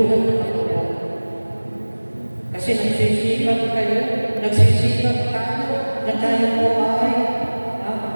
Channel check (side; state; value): both; inverted; correlation -1.00